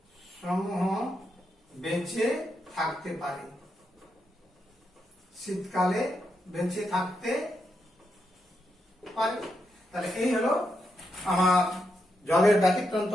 বেঁচে থাকতে পারে। শীতকালে বেঁচে থাকতে পারে। তাহলে এই হলো আমার জলের ব্যতিক্রান্ত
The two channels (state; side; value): normal; both; correlation 0.83